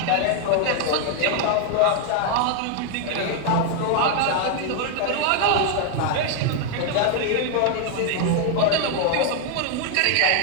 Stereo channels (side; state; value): both; different; correlation 0.00